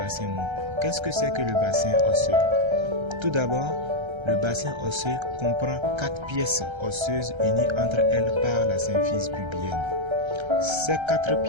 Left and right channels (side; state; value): left; late; 1.3 ms